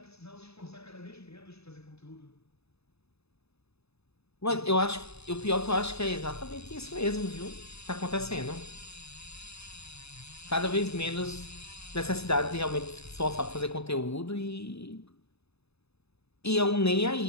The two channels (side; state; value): right; late; 0.79 ms